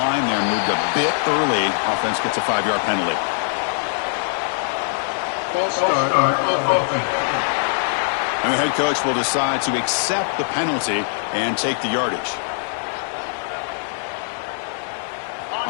there moved a bit early. Offense gets a 5-yard penalty. And the head coach will decide to accept the penalty and take the yardage.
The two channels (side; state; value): right; silent; 56 dB below the other